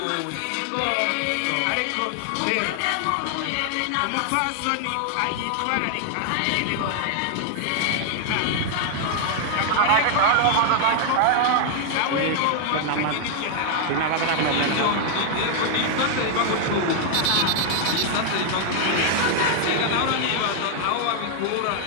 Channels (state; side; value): different; both; correlation 0.00